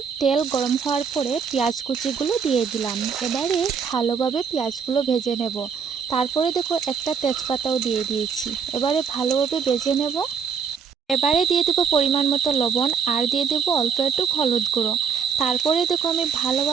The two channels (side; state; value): left; quieter; 6.4 dB